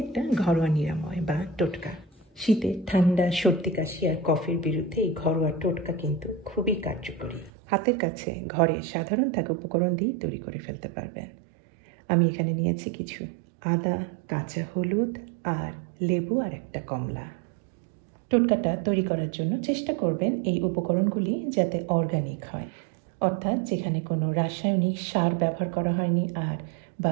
একটা ঘরোয়া নিরাময় বা টোটকা। শীতে ঠান্ডা, সর্দি, কাশি আর কফের বিরুদ্ধে এই ঘরোয়া টোটকা কিন্তু খুবই কার্যকরী। হাতের কাছে ঘরে সাধারণ থাকা উপকরণ দিয়ে তৈরি করে ফেলতে পারবেন। আমি এখানে নিয়েছি কিছু আদা, কাঁচা হলুদ আর লেবু আর একটা কমলা। টোটকাটা তৈরি করার জন্য চেষ্টা করবেন এই উপকরণগুলি যাতে অর্গানিক হয়, অর্থাৎ যেখানে কোনো রাসায়নিক সার ব্যবহার করা হয়নি আর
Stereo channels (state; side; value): drops out; left; at 7.5 s